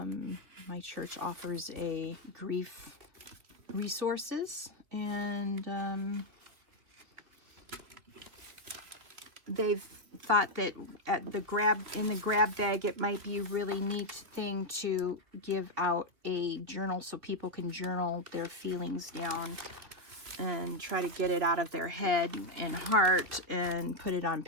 church offers a grief resources, and they've thought that at in the grab bag, it might be a really neat thing to give out a journal so people can journal their feelings down and try to get it out of their head and heart and put it on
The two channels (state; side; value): late; left; 3.2 ms